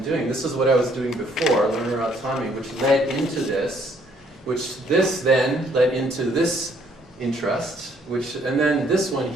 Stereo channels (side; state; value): both; normal; correlation 0.65